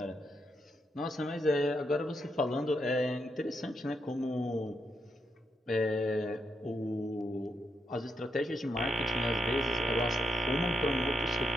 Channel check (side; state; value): both; normal; correlation 0.80